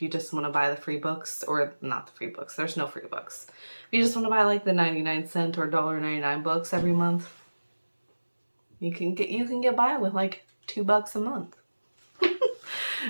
you just want to buy the free books, or not the free books, there's no free books. If you just want to buy like the 99-cent or $1.99 books every month, you can get by with like $2 a month.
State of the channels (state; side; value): inverted; both; correlation -1.00